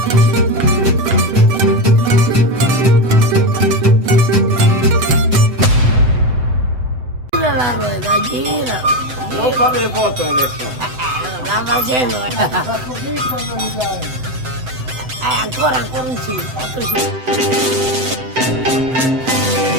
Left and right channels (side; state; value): left; late; 7.8 ms